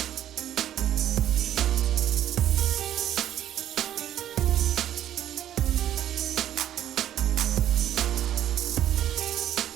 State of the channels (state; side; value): quieter; left; 11.4 dB